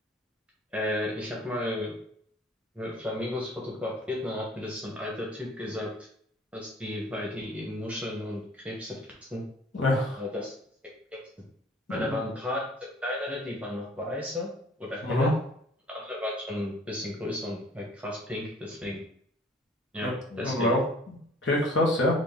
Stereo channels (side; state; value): both; normal; correlation 0.52